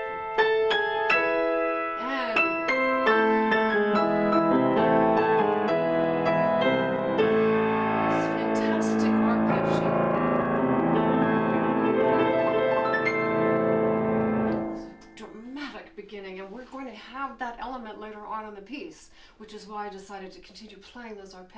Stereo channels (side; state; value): both; identical; correlation 1.00